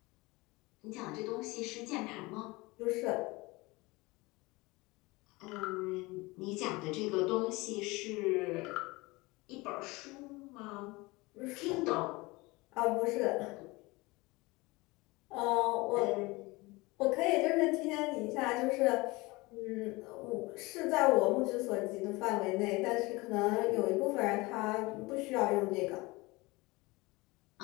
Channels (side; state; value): right; quieter; 23.1 dB